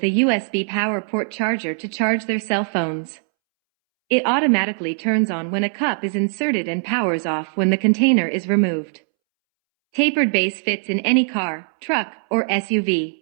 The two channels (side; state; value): left; silent; 65 dB below the other